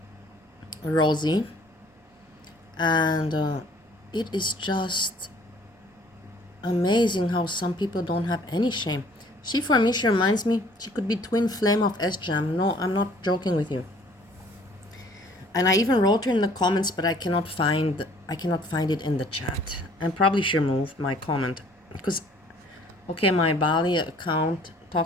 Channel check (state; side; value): normal; both; correlation 0.56